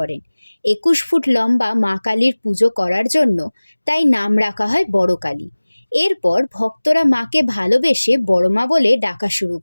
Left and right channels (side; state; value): both; inverted; correlation -1.00